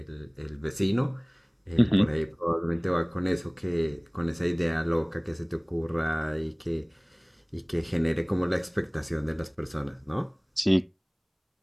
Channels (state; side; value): identical; both; correlation 1.00